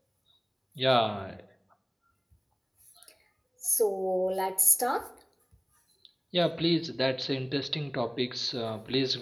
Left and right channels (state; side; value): identical; both; correlation 1.00